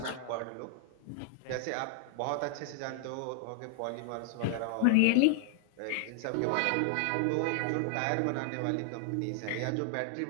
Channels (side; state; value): both; different; correlation 0.00